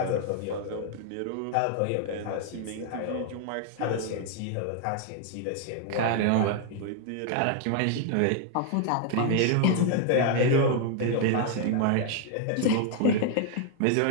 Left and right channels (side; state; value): both; different; correlation 0.00